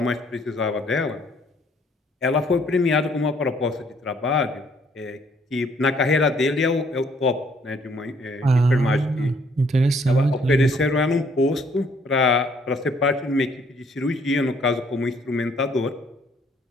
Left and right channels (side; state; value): both; normal; correlation 0.64